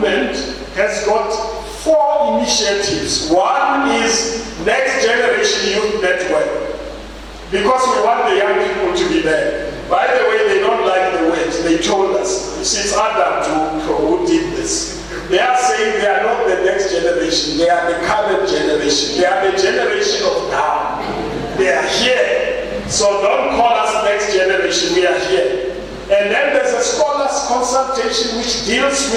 has got 4 initiatives. One is Next Generation Youth Network, because we want the young people to be there. By the way, they don't like the word. They told us. It's Adam who did this. They are saying they are not the next generation. They are the current generation. They are the generation of now. They are here. So don't call us next generation. We are here. And then there's a scholars consultation which deals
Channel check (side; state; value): both; identical; correlation 1.00